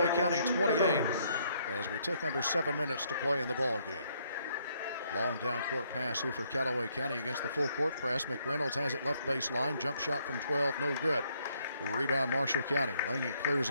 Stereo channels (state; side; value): inverted; both; correlation -0.70